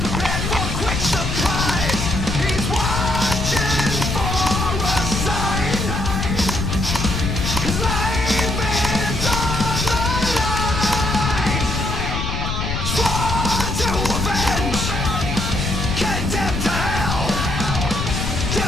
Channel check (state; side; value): noise; left; rumble, 3 dB below the sound